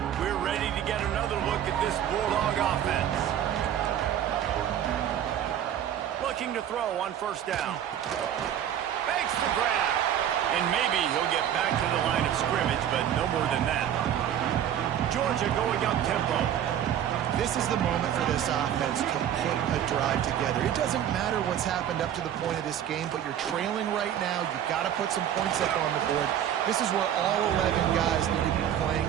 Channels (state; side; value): quieter; left; 10.2 dB